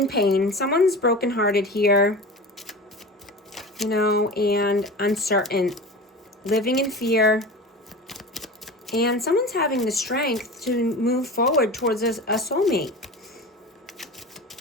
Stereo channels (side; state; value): both; normal; correlation 0.32